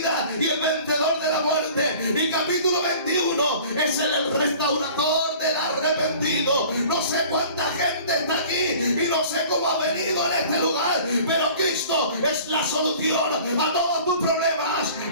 y el vencedor de la muerte. Y capítulo 21 es el restaurador del arrepentido. No sé cuánta gente está aquí y no sé cómo ha venido en este lugar, pero Cristo es la solución a todos tus problemas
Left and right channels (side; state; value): both; inverted; correlation -0.46